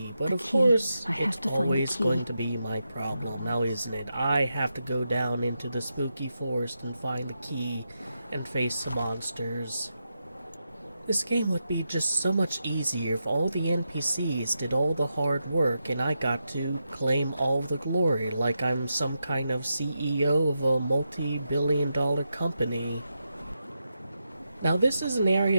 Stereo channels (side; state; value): both; inverted; correlation -0.86